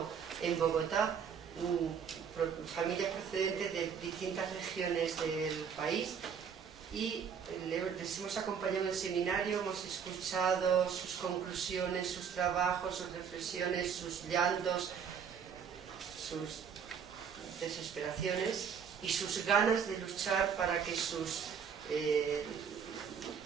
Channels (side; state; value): left; quieter; 7.1 dB